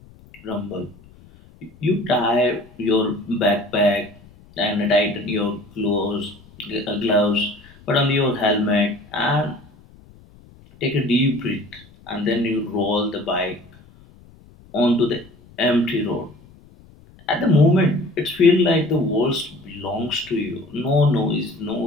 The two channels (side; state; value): left; noise; rumble, 25 dB below the sound